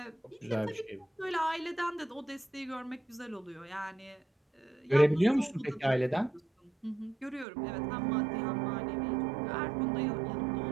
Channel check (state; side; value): drops out; left; at 7.5 s